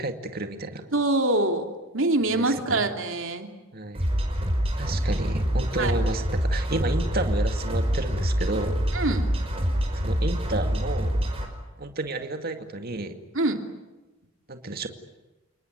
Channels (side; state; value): both; normal; correlation 0.55